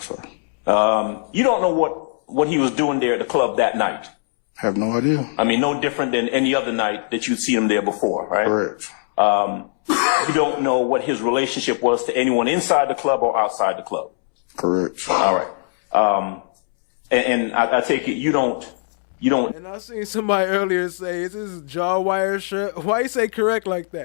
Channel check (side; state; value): right; silent; 65 dB below the other